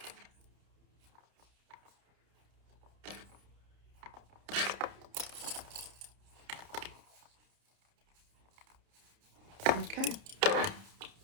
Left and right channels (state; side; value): late; left; 30 ms